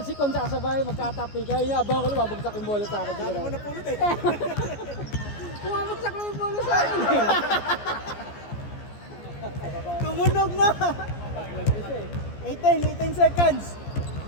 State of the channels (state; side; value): late; right; 14 ms